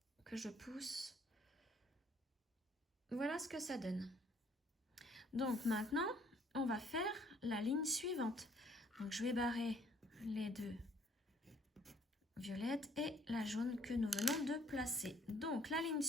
que je pousse. Voilà ce que ça donne. Donc maintenant, on va faire la ligne suivante. Donc je vais barrer les 2 violette et la jaune que nous venons de placer. Donc la ligne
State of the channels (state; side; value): normal; both; correlation 0.62